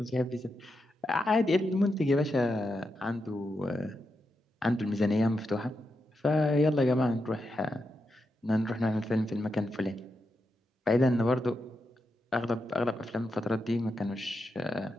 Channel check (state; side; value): normal; both; correlation 0.86